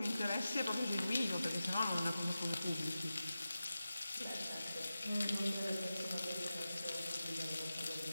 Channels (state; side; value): inverted; both; correlation -0.94